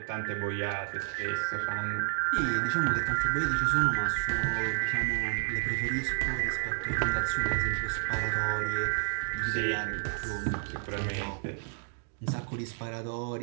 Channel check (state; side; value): silent; left; 57 dB below the other